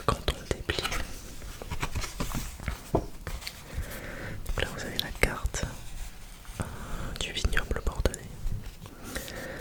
quand on le déplie, donc là vous avez la carte du vignoble bordelais,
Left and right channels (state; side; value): identical; both; correlation 1.00